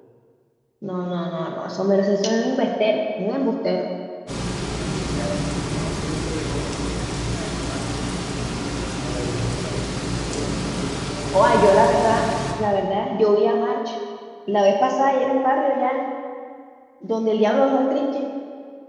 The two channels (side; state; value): both; identical; correlation 1.00